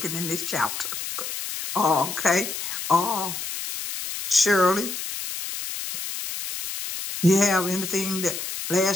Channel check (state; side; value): noise; left; hiss, 6 dB below the sound